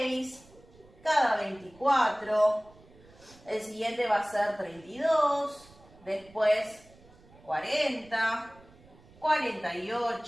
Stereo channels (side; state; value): right; noise; rumble, 25 dB below the sound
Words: cada 24, el siguiente va a ser 32, después 40,